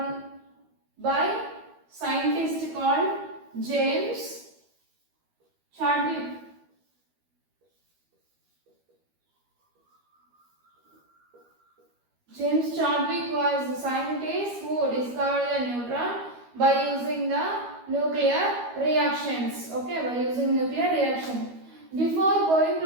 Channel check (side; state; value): left; late; 12 ms